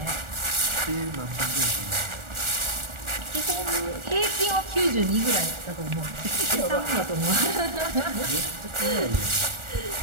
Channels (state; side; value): late; left; 1.4 ms